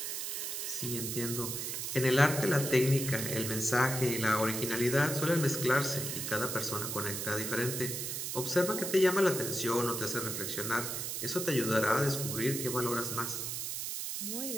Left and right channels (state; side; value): noise; right; hiss, 3 dB below the sound